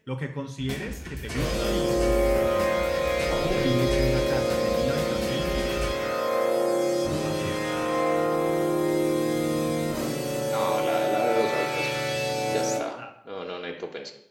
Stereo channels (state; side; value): identical; both; correlation 1.00